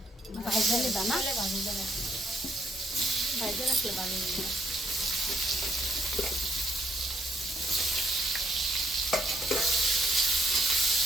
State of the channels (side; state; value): both; normal; correlation 0.73